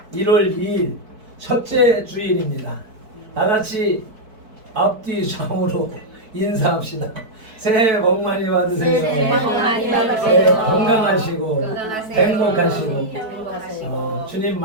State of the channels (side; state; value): left; late; 4.6 ms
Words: 1월 2일 첫째 주일입니다. 다 같이 앞뒤 좌우로 인사합시다. 새해 복 많이 받으세요. 새해 복 많이 받으세요. 새해 건강하시고 건강하세요. 행복하시고 주님